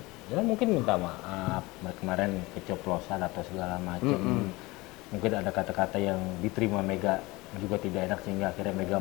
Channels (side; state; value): right; quieter; 22.2 dB